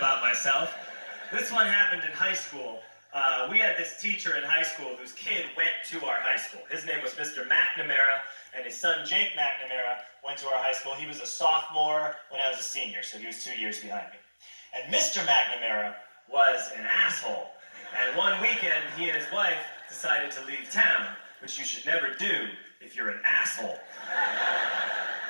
myself. This one happened in high school. We had this teacher in high school whose kid went to our high school. His name was Mr. McNamara, and his son Jake McNamara went to our high school. He was a sophomore when I was a senior, so he was 2 years behind me. And Mr. McNamara was an asshole. And one weekend, he and his wife decided to leave town, which you should never do if you're an asshole.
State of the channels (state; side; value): inverted; both; correlation -1.00